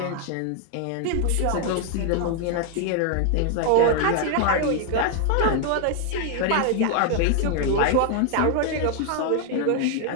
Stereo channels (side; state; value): both; different; correlation 0.00